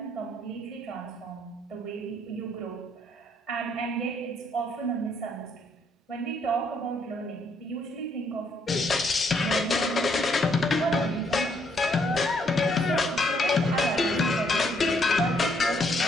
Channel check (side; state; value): both; normal; correlation 0.70